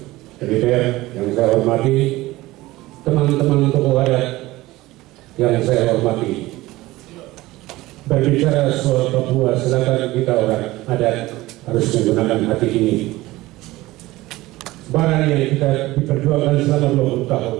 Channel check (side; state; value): left; quieter; 18.5 dB